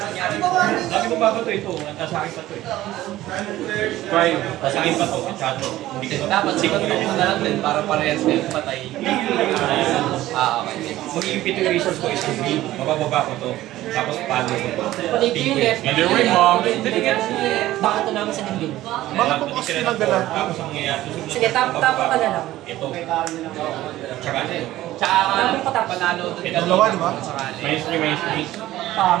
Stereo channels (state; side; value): quieter; left; 15.3 dB